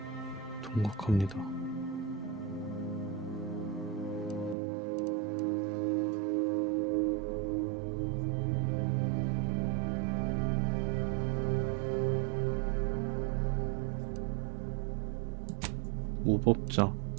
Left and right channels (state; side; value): drops out; left; at 4.5 s